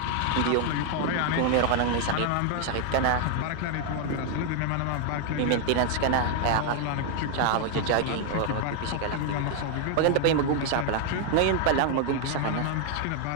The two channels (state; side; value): different; both; correlation 0.00